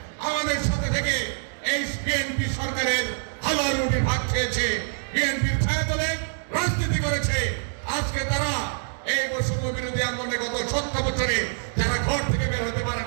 আমাদের সাথে থেকে এই বিএনপি সরকারের হালুয়া রুটি ভাগ খেয়েছে, বিএনপির ছায়াতলে রাজনীতি করেছে। আজকে তারা এই বৈষম্য বিরোধী আন্দোলনে গত 17 বছরে যারা ঘর থেকে বের হতে পারে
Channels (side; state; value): left; silent; digital silence